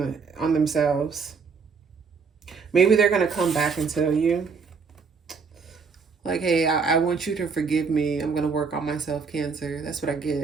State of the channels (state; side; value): quieter; left; 5.3 dB